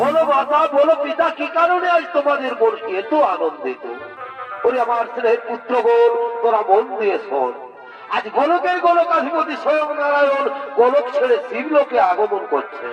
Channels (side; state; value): both; identical; correlation 1.00